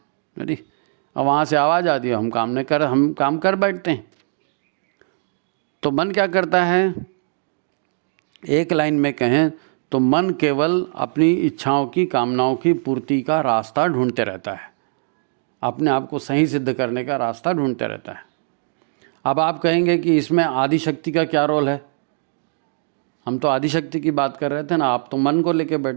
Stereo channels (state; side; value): silent; left; digital silence